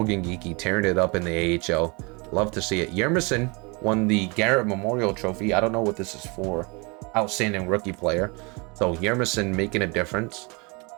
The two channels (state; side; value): quieter; left; 29.5 dB